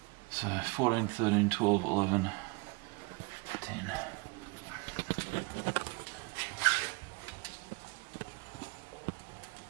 So 14, 13, 12, 11, 10.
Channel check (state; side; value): quieter; left; 27.6 dB